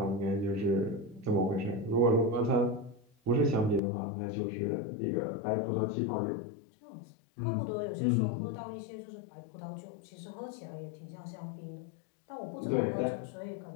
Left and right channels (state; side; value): drops out; right; at 3.8 s